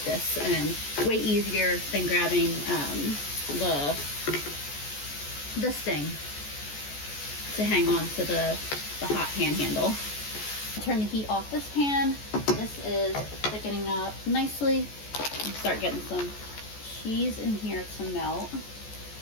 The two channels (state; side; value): late; right; 14 ms